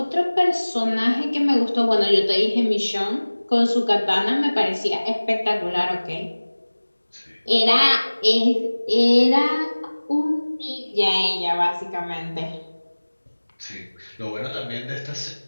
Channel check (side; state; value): both; inverted; correlation -1.00